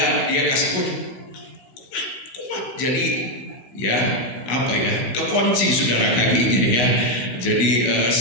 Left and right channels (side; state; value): right; late; 16 ms